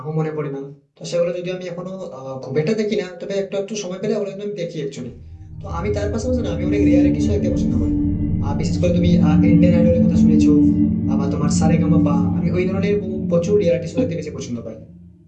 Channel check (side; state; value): both; identical; correlation 1.00